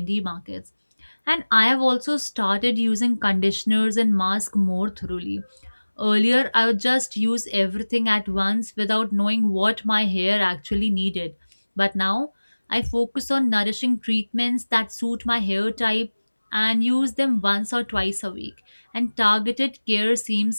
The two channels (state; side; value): inverted; both; correlation -1.00